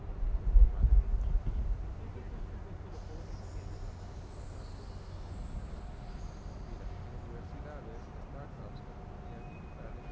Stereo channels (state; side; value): identical; both; correlation 1.00